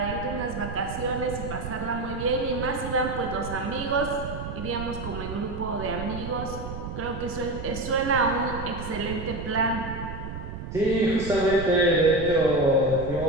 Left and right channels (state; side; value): noise; right; rumble, 8 dB below the sound